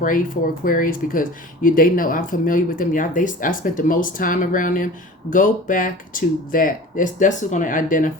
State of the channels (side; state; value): both; normal; correlation 0.40